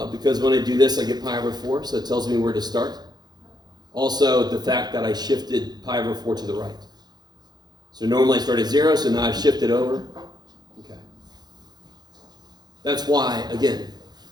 Because when I do this, I get pi over 4, so it tells me where to start. Also, the fact that I shifted pi over 4 to the right. So normally I start at 0, so now I've shifted over. Okay. That's why, again,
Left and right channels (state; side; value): late; left; 0.20 ms